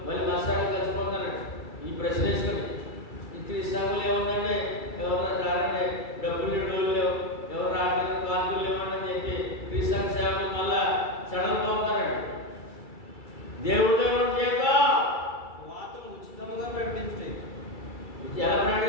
మళ్ళీ మా సంఘం కలిసిపోతారండి. ఈ ప్రశ్న వేసుకొని ఈ క్రీస్తు సంఘంలో ఏముందండి, ఎవరన్నా రారండి, డబ్బులు డోలు లేవు, ఎవరు రావడానికి కానుకలు లేవండి అని చెప్పి క్రీస్తు సంఘ సేవకులు మళ్ళా సడలిపోతారండి. దేవుడితో జీతం వార్తను ఉచితంగా ప్రకటించండి. ఎలా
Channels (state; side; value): late; right; 2.3 ms